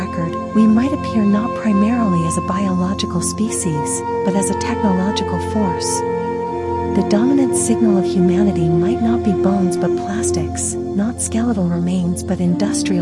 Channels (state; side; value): identical; both; correlation 1.00